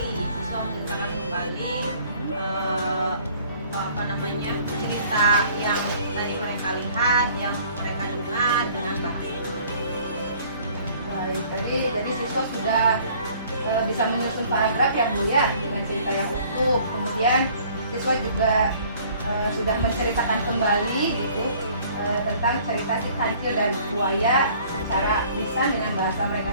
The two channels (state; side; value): inverted; both; correlation -0.55